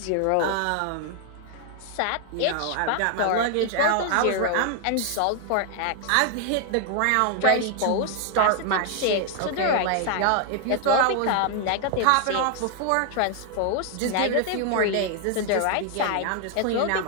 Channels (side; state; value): both; different; correlation 0.00